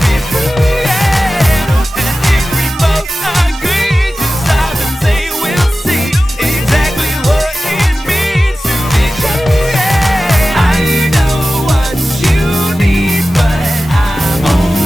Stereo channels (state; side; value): normal; both; correlation 0.95